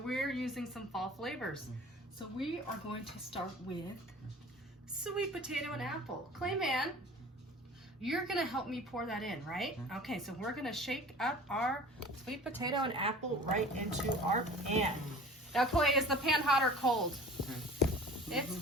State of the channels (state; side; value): normal; both; correlation 0.43